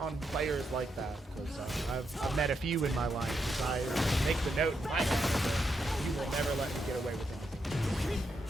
players like that, because I've met a few in my life. I make the note in my head that you will never let me get away with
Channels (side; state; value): both; normal; correlation 0.82